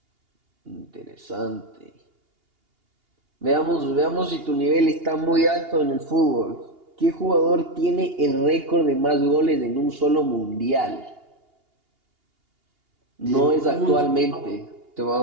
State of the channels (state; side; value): late; left; 2.8 ms